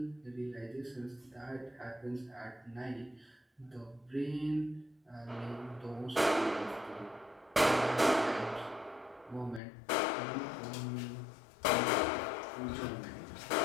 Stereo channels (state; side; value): drops out; right; at 9.6 s